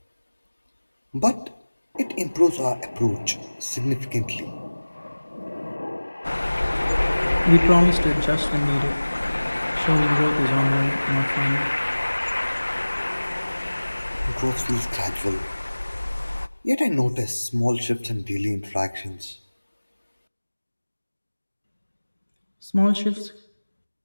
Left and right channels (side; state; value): both; inverted; correlation -1.00